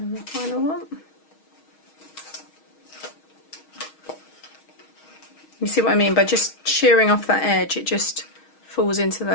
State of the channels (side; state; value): right; late; 6.3 ms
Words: the final one. You see what I mean? By just shearing off that edge, it just falls into